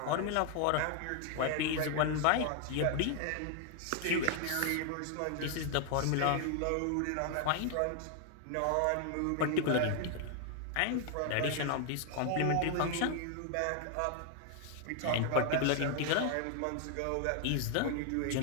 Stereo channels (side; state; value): both; different; correlation 0.00